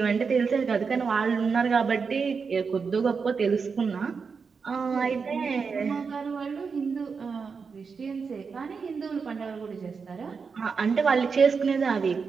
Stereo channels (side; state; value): left; quieter; 5.4 dB